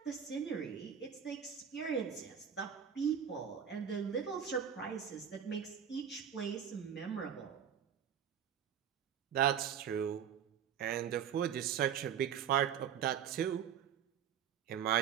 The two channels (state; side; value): quieter; left; 8.5 dB